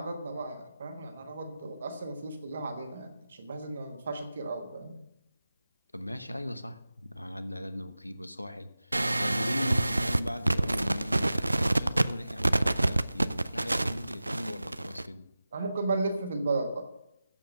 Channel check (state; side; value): inverted; both; correlation -0.94